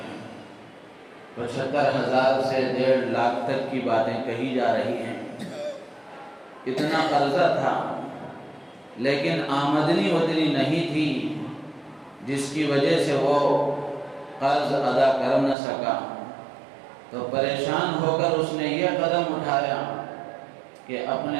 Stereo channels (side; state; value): left; drops out; at 15.6 s